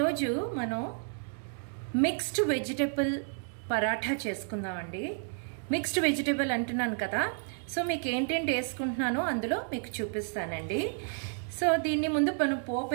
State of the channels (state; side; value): silent; left; 57 dB below the other